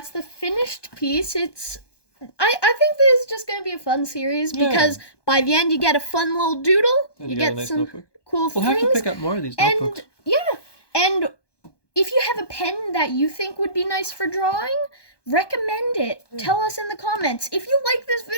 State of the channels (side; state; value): right; late; 1.2 ms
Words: the finished piece. It's... I think this is just going to be a fun series because by the end you get a fun little doodle. And You got a get nice some notebook. cool We'll things. have to pick up more of these And notebooks. yeah, and if you have a pen that you think would be nice for drawing, recommend it. Tell us in the comments. If you like this